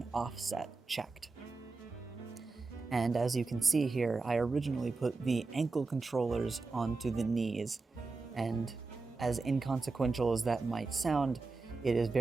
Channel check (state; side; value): quieter; left; 3.9 dB